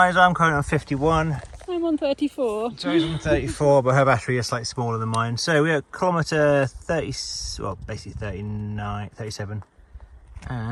I'm currently on 51. I'm on 34. Joe's on 34, but her battery is slightly smaller than mine. So we're at kilometre 30, well basically 39, 37.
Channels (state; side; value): identical; both; correlation 1.00